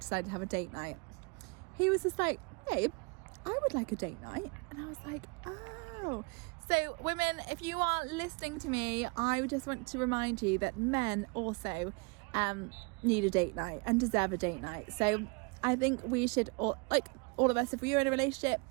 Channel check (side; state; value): left; quieter; 30.8 dB